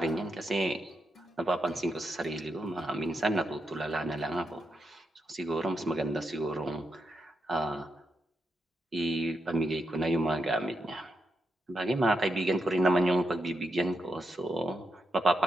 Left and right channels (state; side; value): normal; both; correlation 0.84